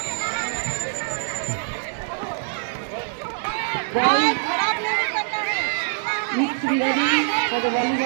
Needs to be ready for the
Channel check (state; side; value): silent; left; digital silence